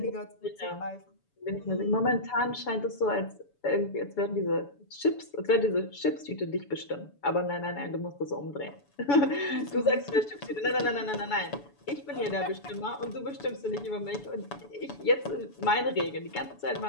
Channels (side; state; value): right; late; 7.0 ms